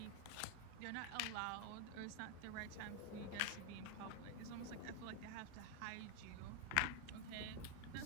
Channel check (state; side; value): different; both; correlation 0.01